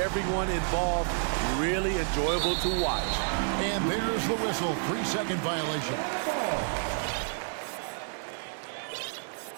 involved, really enjoyable to watch. And there's the whistle, 3-second violation.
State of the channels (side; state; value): left; silent; digital silence